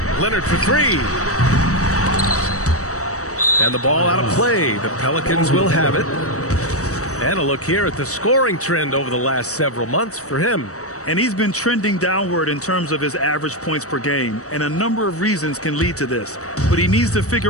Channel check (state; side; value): late; right; 0.65 ms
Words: Leonard for 3. And the ball out of play. The Pelicans will have it. And a look here at the scoring trend over the last several months for him. And he's been trending downward in terms of his average points per game, and a number of reasons can lead to this. But he needs to